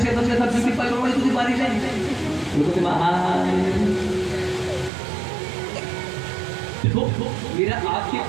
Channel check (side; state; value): left; drops out; at 4.9 s